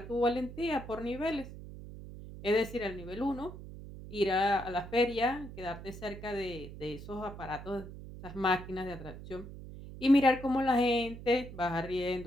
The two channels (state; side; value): noise; right; hum, 12 dB below the sound